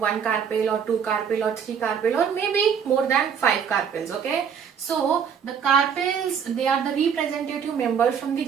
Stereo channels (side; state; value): left; quieter; 7.4 dB